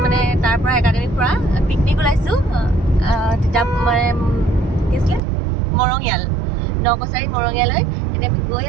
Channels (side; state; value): left; drops out; at 5.2 s